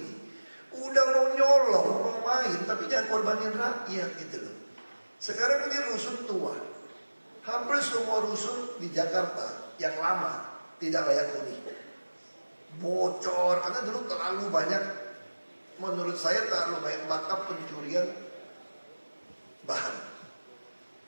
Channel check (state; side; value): inverted; both; correlation -1.00